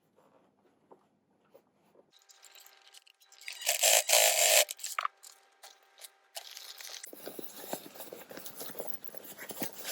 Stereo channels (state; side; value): identical; both; correlation 1.00